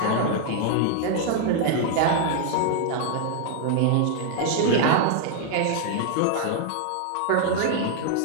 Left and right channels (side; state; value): both; different; correlation 0.00